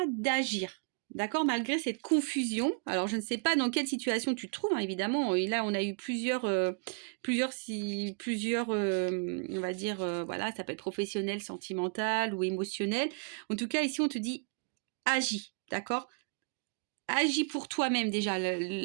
d'agir. D'accord, malgré cette confusion. Alors, je ne sais pas dans quelle situation tu te trouves, hein, évidemment. Et là, on a eu plusieurs, on va dire, voilà, ça peut être professionnel, sentimental ou émotionnel. En tout cas, ici, on te dit, agis, d'accord? Agis pour toi-même déjà.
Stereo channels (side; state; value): left; quieter; 37.8 dB